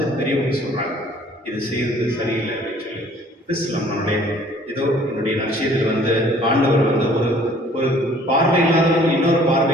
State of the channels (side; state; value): both; normal; correlation 0.55